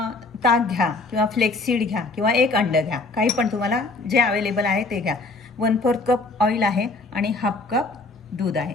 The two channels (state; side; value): quieter; right; 3.4 dB